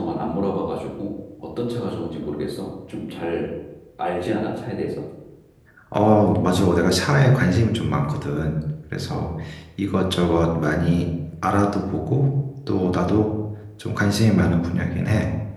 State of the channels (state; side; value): identical; both; correlation 1.00